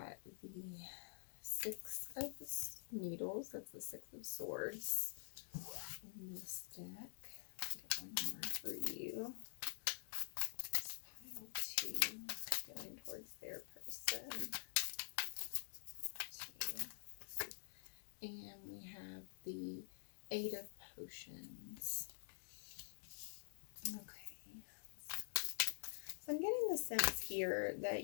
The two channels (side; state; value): right; silent; digital silence